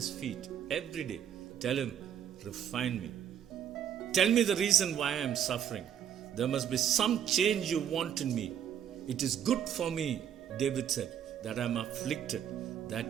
feet every day. Tell him, refine me. Tell me the reason why I am suffering. There must be some change you want in me. It is good for me, David said, that I am afflicted,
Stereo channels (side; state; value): left; quieter; 9.4 dB